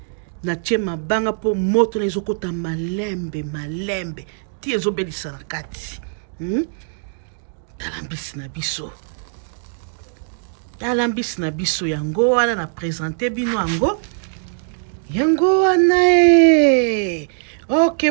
natie mabanga po moto na ezokota malembe ti ezobelisa na kati tala mbisi na biso yango wana na présente bino yango wana ok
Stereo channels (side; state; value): left; silent; digital silence